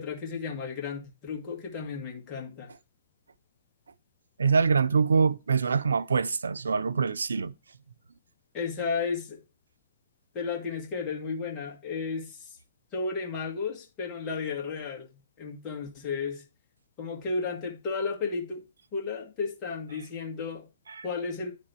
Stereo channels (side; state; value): both; inverted; correlation -0.72